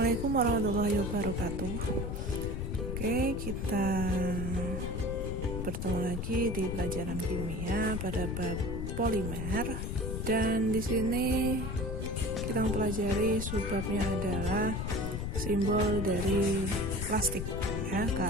warahmatullahi wabarakatuh. Oke, kita bertemu lagi di pelajaran kimia pada bab polimer, dan di sini kita mempelajari subbabnya adalah simbol dari plastik ya,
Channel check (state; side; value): noise; left; rumble, 3 dB below the sound